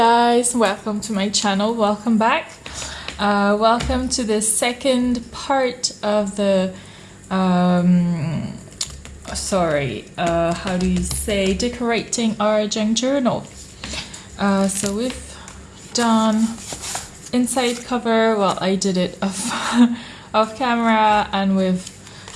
welcome to my channel, welcome back. Welcome to the second part of the how do you say, decorating our junk journal. So we've done inside cover. Well, I did it off camera, and we've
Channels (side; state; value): both; identical; correlation 1.00